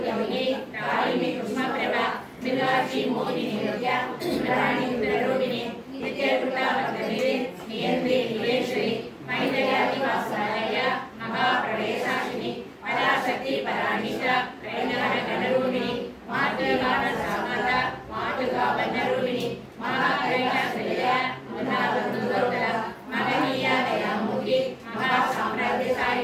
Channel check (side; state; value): both; identical; correlation 1.00